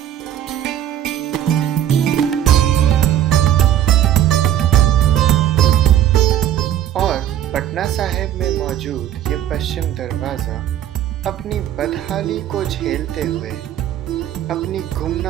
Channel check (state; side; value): quieter; left; 11.3 dB